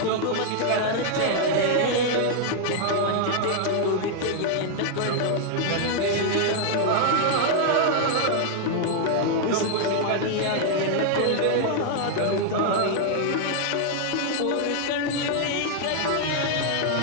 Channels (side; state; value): both; different; correlation 0.00